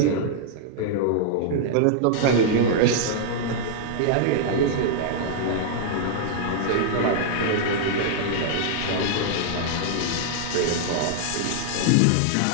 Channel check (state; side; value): different; both; correlation -0.01